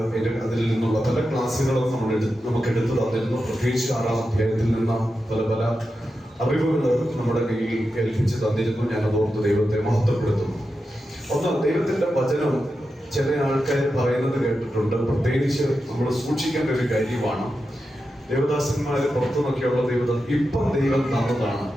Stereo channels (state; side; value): normal; both; correlation 0.90